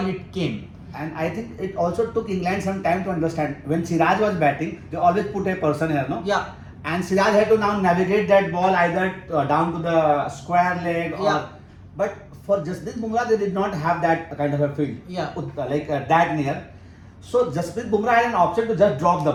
it came. And I think it also took England some time to understand. When Siraj was batting, they always put a person here, no? Yeah. And Siraj had to now navigate that ball either down to the square leg or. Yeah. But for Jasprit Bumrah, they did not have that kind of a field. Yeah. That near. So Jasprit Bumrah had an option to just drop the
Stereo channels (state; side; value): identical; both; correlation 1.00